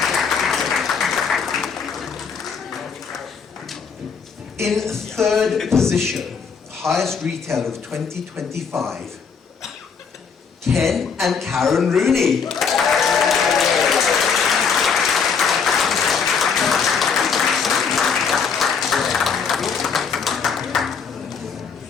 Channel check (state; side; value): quieter; right; 6.1 dB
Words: In third position, highest retailer of 2025, Ken and Karen Rooney.